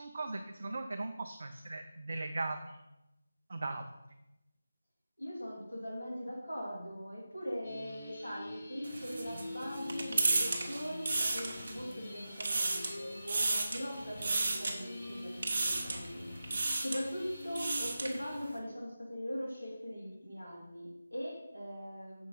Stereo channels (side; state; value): both; inverted; correlation -0.94